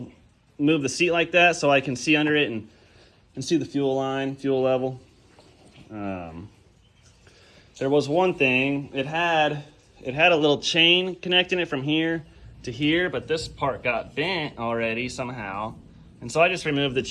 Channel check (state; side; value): identical; both; correlation 1.00